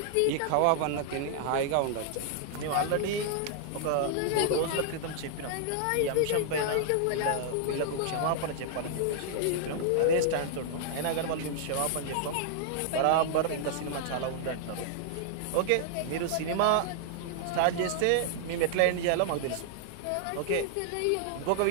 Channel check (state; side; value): different; both; correlation -0.01